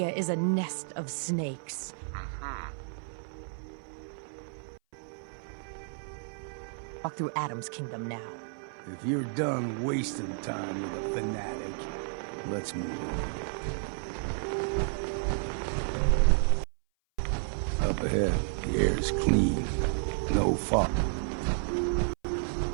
is a nest of snakes. Walk through Adam's kingdom now. If you're done wasting time with a fanatic, let's move on. Up ahead, the air's clean. No fog.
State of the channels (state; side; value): silent; left; 56 dB below the other